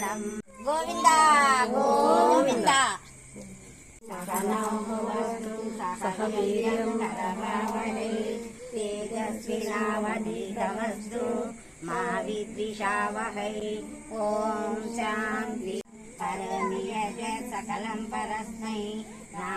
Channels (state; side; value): identical; both; correlation 1.00